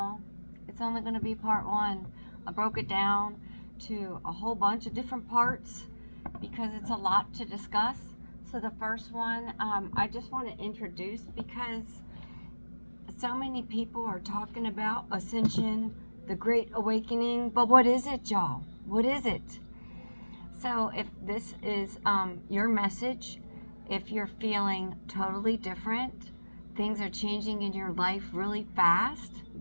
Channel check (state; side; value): inverted; both; correlation -1.00